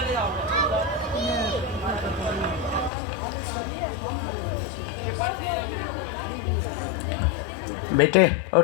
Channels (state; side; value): drops out; right; at 2.9 s